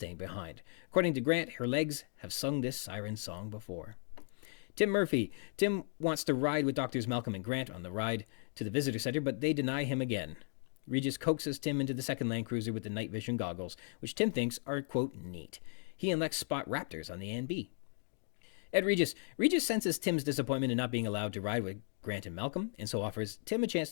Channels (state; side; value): silent; right; 54 dB below the other